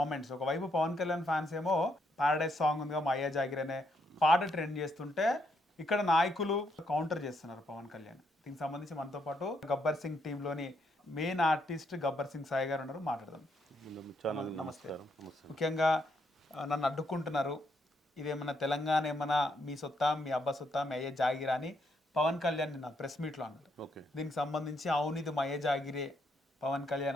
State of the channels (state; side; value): normal; both; correlation 0.75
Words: ఒకవైపు పవన్ కళ్యాణ్ ఫ్యాన్స్ ఏమో పారడైజ్ సాంగ్ ఉందిగా మా అయ్యే జాగిరా అనే పాట ట్రెండ్ చేస్తుంటే, ఇక్కడ నాయకులు కౌంటర్ చేస్తున్నారు పవన్ కళ్యాణ్. దీనికి సంబంధించి మనతో పాటు గబ్బర్ సింగ్ టీంలోని మెయిన్ ఆర్టిస్ట్ గబ్బర్ సింగ్ సాయి గారు ఉన్నారు. మాట్లాడదాం. నమస్తే. ముఖ్యంగా నన్ను అడ్డుకుంటున్నారు, ఇదేమన్నా తెలంగాణ ఏమన్నా మీ సొత్తా, మీ అబ్బా సొత్తా, మీ అయ్యే జాగిరా అని పవన్ కళ్యాణ్ నిన్న ప్రెస్ మీట్లో అన్నారు. దీనికి సంబంధించి అవును ఇది మా అయ్యే జాగిరే పవన్